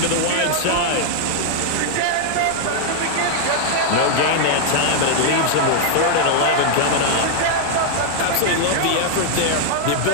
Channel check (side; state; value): both; different; correlation -0.01